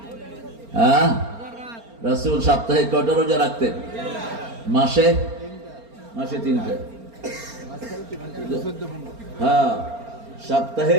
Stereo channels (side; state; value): left; late; 4.3 ms